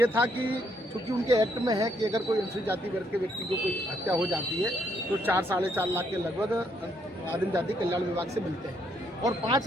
था कि चूँकि उनके एक्ट में है कि अगर कोई अनुसूचित जाति वर्ग के व्यक्ति को कोई हत्या हो जाती है तो 4-4.5 लाख के लगभग आदिम जाति कल्याण विभाग से मिलते हैं और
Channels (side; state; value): both; normal; correlation 0.73